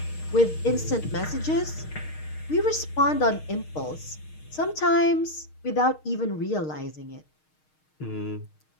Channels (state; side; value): late; right; 6.5 ms